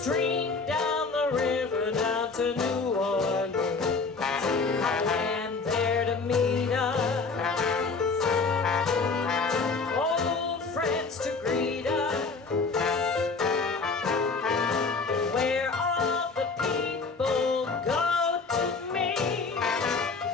down the river down to New Orleans, and there to meet us, old friends to greet us.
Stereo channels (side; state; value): right; quieter; 4.4 dB